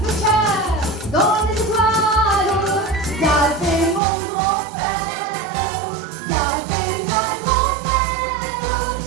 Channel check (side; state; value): left; drops out; at 4.0 s